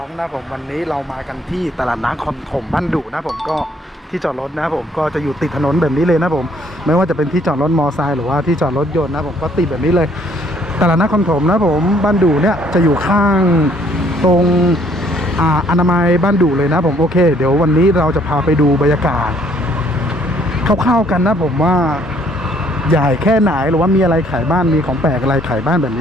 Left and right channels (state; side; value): normal; both; correlation 0.63